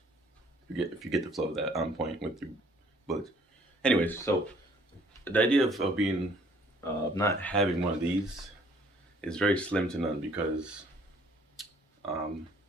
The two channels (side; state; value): both; normal; correlation 0.59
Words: If you get the flow of that, on point with your bullets. Anyways, so the idea of being not having one of these is very slim to none because